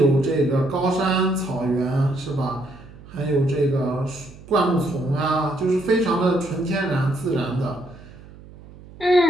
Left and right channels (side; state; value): right; noise; hum, 20 dB below the sound